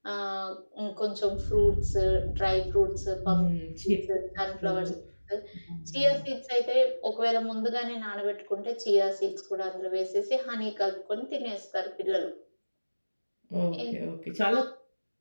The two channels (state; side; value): inverted; both; correlation -1.00